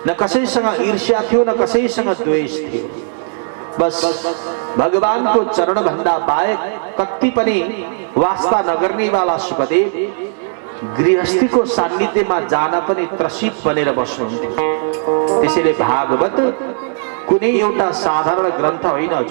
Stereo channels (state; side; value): silent; left; digital silence